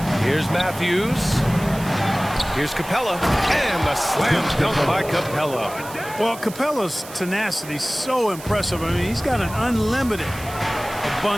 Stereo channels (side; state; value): right; noise; hiss, 15 dB below the sound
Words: Here's Matthews. Here's Capella. And the slam dunk by Capella. Well, Capella's tenacity is so impressive. I mean, he's got an unlimited